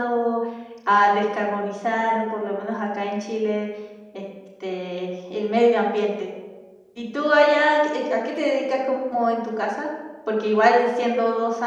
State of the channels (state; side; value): identical; both; correlation 1.00